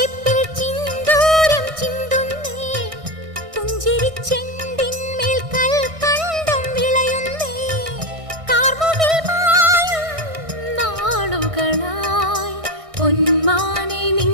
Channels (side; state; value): left; late; 1.6 ms